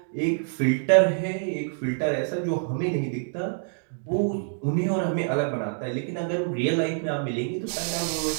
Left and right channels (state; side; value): silent; left; digital silence